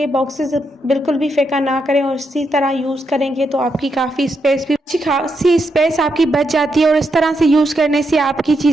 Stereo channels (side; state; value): both; normal; correlation 0.81